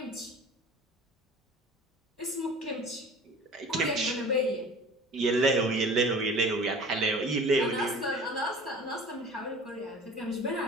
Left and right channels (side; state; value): both; normal; correlation 0.42